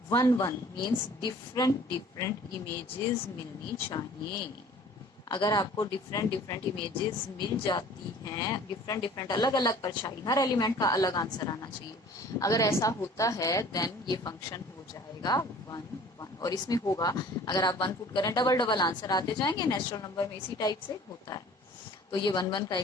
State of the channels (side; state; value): both; normal; correlation 0.49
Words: 1 1 मीन्स डिफरेंट इमेजेस मिलनी चाहिए। अगर आपको डिफरेंट इमेजेस मिल जाती हैं, डिफरेंट अलग अलग परछाई, हर एलिमेंट का अलग आंसर आना चाहिए। अगर ऐसा होता है देन ये फंक्शन हो जाएगा 1 1। और इसमें होगा, अगर आप 1 पुट करें डबल आंसर आते जाएंगे, नेचुरल नंबर में इसी टाइप से होता है। तो ये 1 1 का